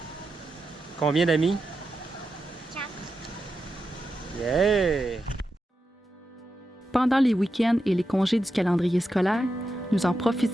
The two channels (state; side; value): normal; both; correlation 0.88